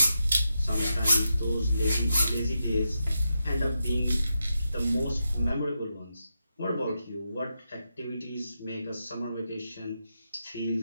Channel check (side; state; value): both; inverted; correlation -0.86